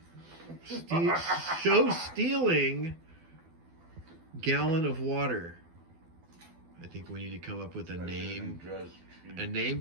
show-stealing gallon of water. I think we need to come up with a name. A name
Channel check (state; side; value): late; left; 12 ms